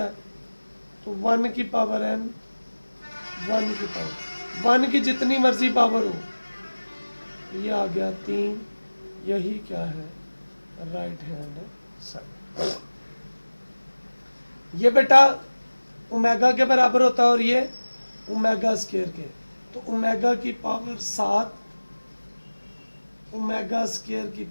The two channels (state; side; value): inverted; both; correlation -1.00